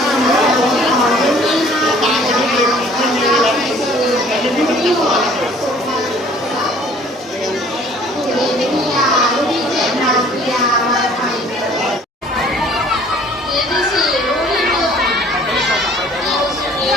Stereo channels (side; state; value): both; normal; correlation 0.54